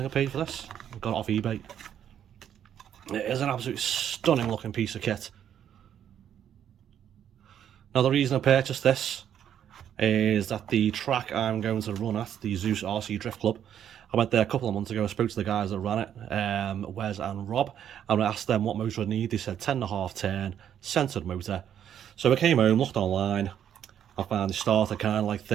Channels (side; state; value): left; quieter; 9.6 dB